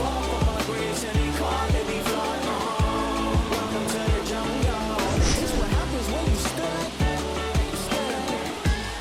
for my grace, and they calling me God. Welcome to the jungle. It's what happens when you stand.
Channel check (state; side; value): identical; both; correlation 1.00